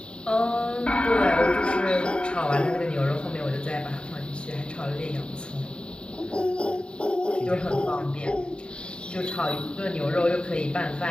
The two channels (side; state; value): right; late; 0.052 ms